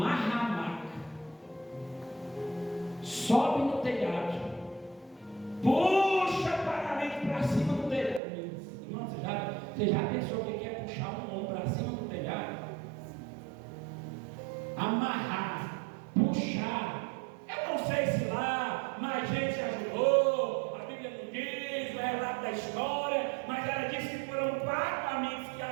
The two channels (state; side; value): drops out; left; at 8.2 s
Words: a maca, sobe no telhado, puxa o paralítico para cima do telhado. Irmão, você já pensou o que é puxar um homem para cima do telhado? Amarrar, puxar. Eu não sei se lá mais gente ajudou, a Bíblia não diz, o relato da história, mas ela disse que foram 4 amigos que